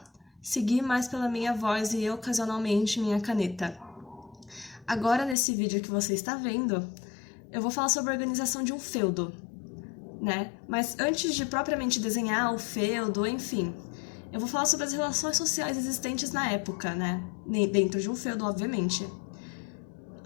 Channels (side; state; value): right; drops out; at 5.4 s